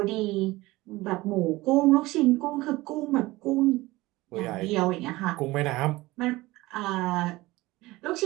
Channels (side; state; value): left; quieter; 19.8 dB